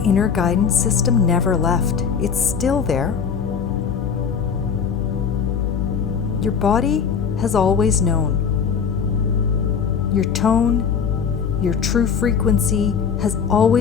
inner guidance system never left. It's still there. Your body has always known. Your tone, your true frequency has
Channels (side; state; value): right; quieter; 6.6 dB